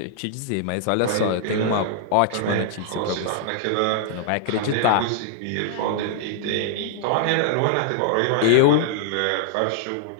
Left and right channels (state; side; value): different; both; correlation -0.01